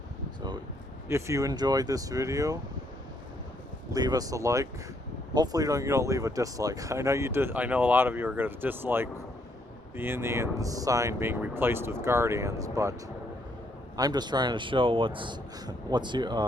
So if you enjoyed this video, leave us a like. Hopefully you don't leave a dislike. I know you did. I know a lot of you are going to dislike the Indian sign being replaced with Guardians, but I'm just trying to show what's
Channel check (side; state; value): both; normal; correlation 0.72